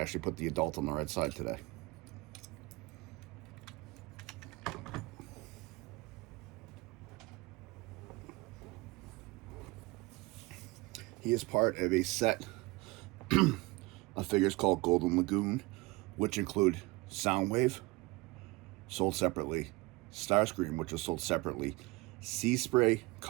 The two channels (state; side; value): quieter; left; 23.0 dB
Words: put the adult on the right side today. He is part of a set of figures called Golden Lagoon, which include Soundwave, sold separately. Starscream, which was sold separately. Sea Spray,